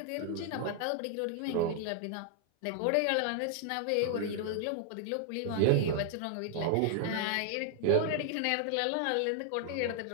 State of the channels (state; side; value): different; both; correlation 0.00